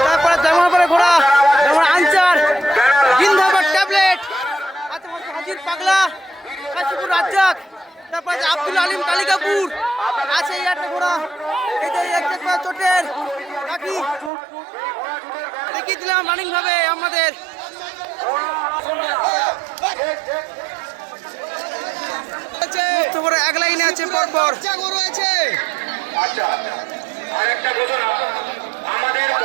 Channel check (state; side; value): drops out; left; at 14.3 s